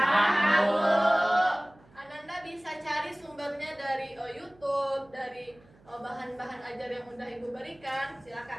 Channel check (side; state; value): right; noise; hum, 28 dB below the sound